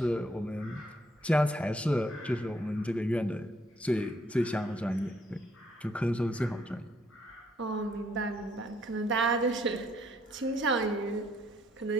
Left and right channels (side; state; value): both; normal; correlation 0.69